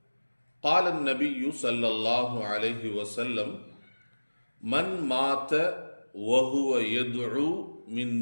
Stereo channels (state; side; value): inverted; both; correlation -1.00